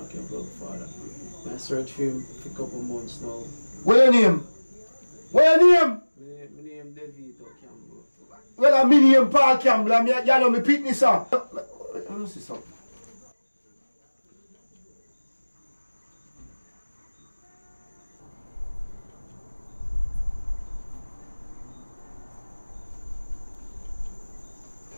Campbell father. I search for him for a couple months now. Where your name? Where your name? My name Devito Campbell. Well, I'm name Paul Campbell. I'm you know me pitney sir. Let me see something.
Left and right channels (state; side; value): inverted; both; correlation -1.00